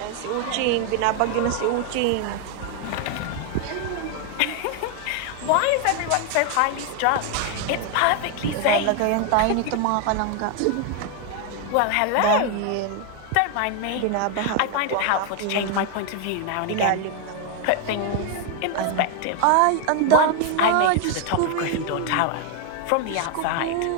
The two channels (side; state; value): both; different; correlation 0.01